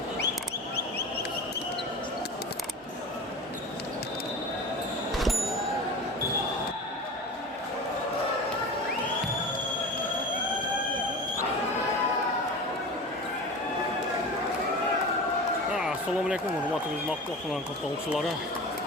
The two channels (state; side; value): normal; both; correlation 0.32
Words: Assalamu alaikum, hurmatli xizmatga qilan qatnashchilari.